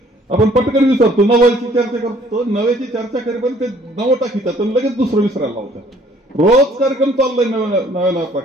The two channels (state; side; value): normal; both; correlation 0.59